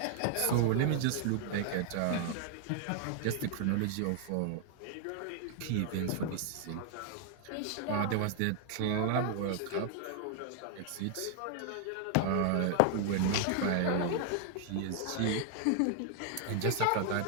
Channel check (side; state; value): both; different; correlation 0.00